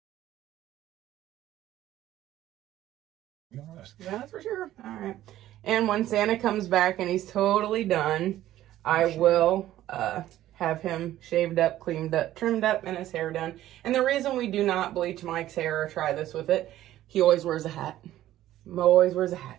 Yeah, that's for sure. All right. And when Santa comes back and he's totally done, I will have him shaved up, cleaned up, trimmed up, and his hair done. And the reason we do not bleach Mike's hair or try this with it, he always wears a hat. Mo always wears a hat.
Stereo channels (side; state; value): left; quieter; 13.7 dB